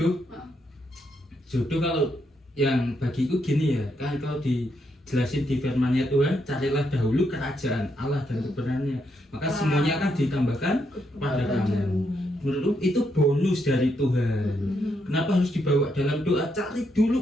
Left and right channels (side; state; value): both; normal; correlation 0.79